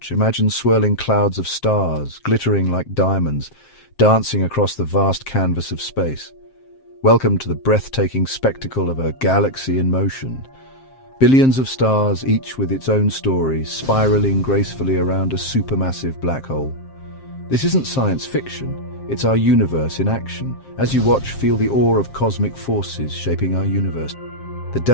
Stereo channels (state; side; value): late; right; 7.6 ms